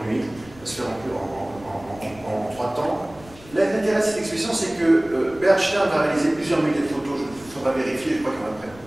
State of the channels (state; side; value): noise; left; rumble, 21 dB below the sound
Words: nuits, va se faire en 3 temps. L'intérêt de cette expédition, c'est que Bert Stern va réaliser plusieurs milliers de photos, il faudra vérifier, je crois qu'il y en a près de